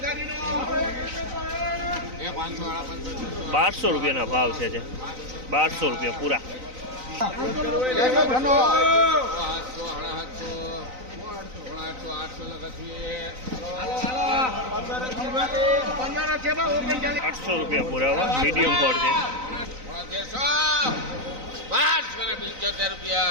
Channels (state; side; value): late; left; 3.9 ms